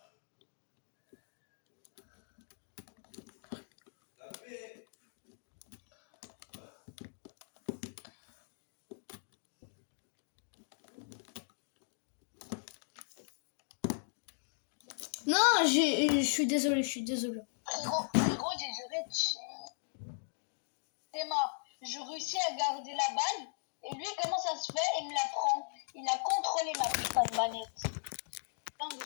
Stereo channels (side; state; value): right; silent; digital silence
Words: Non, je suis désolé, je suis désolé. Frérot, j'ai juré. Théma, je réussis à garder la balle. Et lui, comment ça se fait? Il me la prend. Il a contrôlé ma putain de manette.